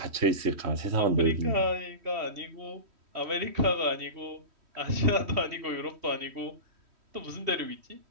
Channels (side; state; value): left; late; 3.1 ms